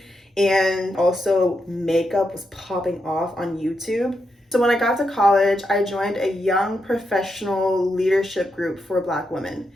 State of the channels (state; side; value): normal; both; correlation 0.84